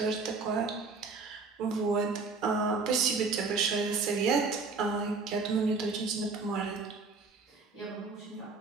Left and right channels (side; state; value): left; quieter; 4.3 dB